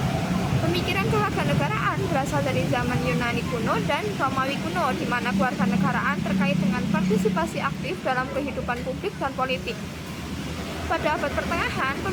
Pemikiran kewarganegaraan berasal dari zaman Yunani kuno dan Romawi kuno, di mana kewarganegaraan terkait dengan partisipasi aktif dalam kehidupan publik dan politik. Pada abad pertengahan,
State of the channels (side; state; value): both; identical; correlation 1.00